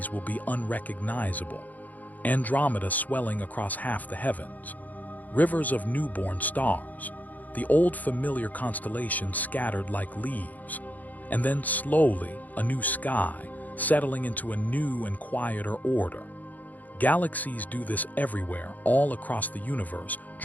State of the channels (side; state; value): right; late; 0.080 ms